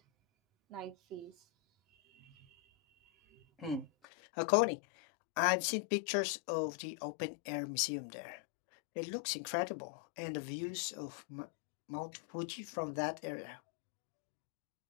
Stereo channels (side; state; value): right; drops out; at 3.9 s